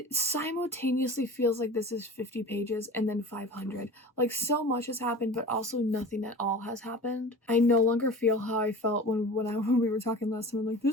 simultaneously feels like this is 50 pages and then 500. Like, so much has happened, but also nothing at all has happened. I no longer feel how I felt when we were talking last time. I'm like,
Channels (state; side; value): normal; both; correlation 0.37